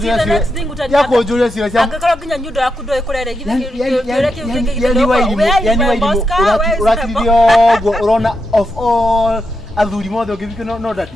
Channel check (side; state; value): both; normal; correlation 0.85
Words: cio. Ya kujuria cio cia. Angakora nginya nyundo yaku ndo ikurere githe yani Wairimu uratithio gwo urona of all athuri mothe ungibike no